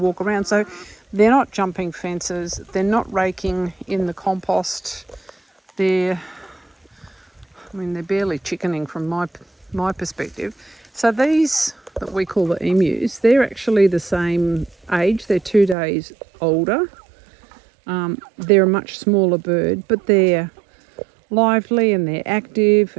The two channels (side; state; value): left; drops out; at 15.8 s